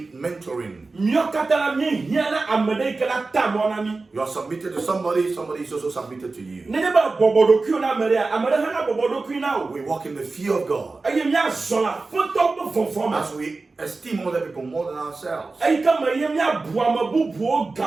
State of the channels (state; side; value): quieter; left; 3.7 dB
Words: mentoring. You are submitted to somebody, somebody is also submitted to you. We walk in the fear of God as we esteem other people more than ourselves. We